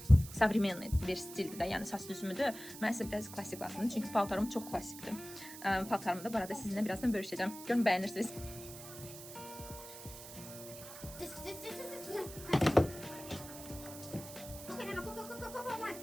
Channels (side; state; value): right; noise; hiss, 13 dB below the sound